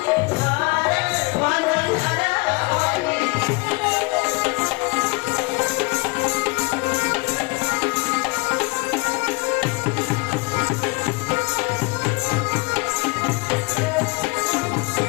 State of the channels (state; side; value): quieter; right; 27.7 dB